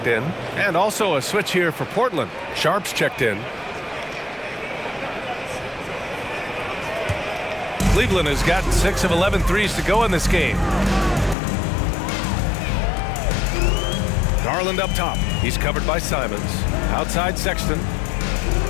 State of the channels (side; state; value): right; drops out; at 11.4 s